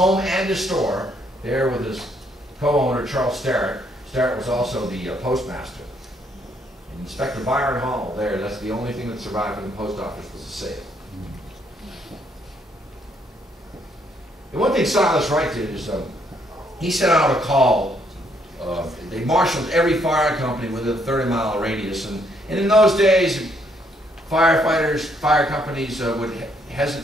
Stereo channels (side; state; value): both; normal; correlation 0.70